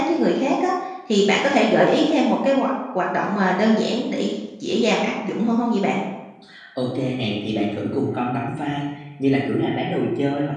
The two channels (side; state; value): both; identical; correlation 1.00